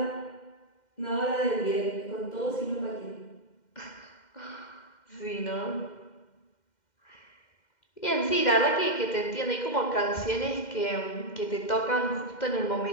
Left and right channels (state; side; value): late; right; 2.1 ms